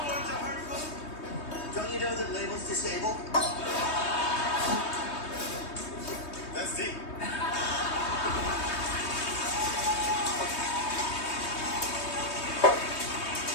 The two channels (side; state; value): right; late; 3.2 ms